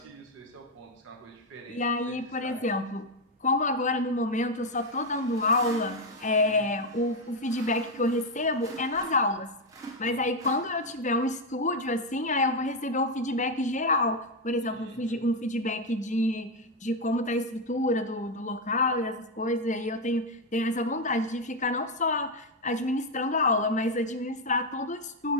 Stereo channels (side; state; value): both; normal; correlation 0.06